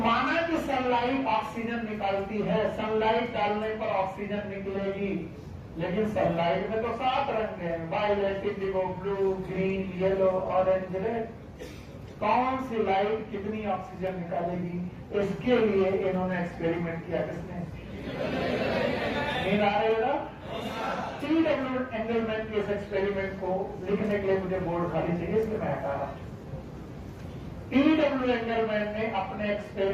कि सनलाइट ऑक्सीजन निकालती है, सनलाइट डालने पर ऑक्सीजन निकलेगी, लेकिन सनलाइट में तो 7 रंग हैं, violet, indigo, blue, green, yellow, orange, red. कौन सी लाइट कितनी ऑक्सीजन निकालेगी? इसके लिए इन्होंने एक्सपेरिमेंट किया। किसने? नींद आ रही है ना? TW एंगलमैन के इस एक्सपेरिमेंट को लिखने के लिए मुझे बोर्ड खाली चाहिए, इसलिए मैं हटा रहा हूं। TW एंगलमैन ने अपने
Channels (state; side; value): identical; both; correlation 1.00